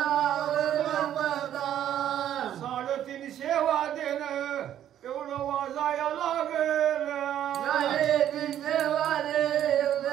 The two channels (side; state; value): left; quieter; 10.9 dB